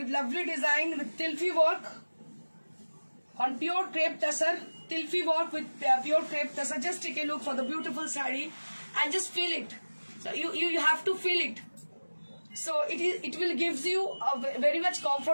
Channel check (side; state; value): both; inverted; correlation -1.00